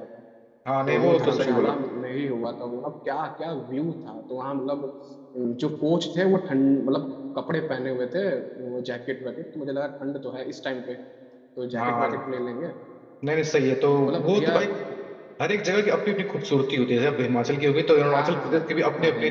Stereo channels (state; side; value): identical; both; correlation 1.00